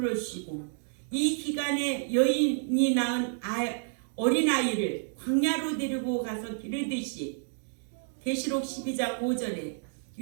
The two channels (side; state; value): left; silent; digital silence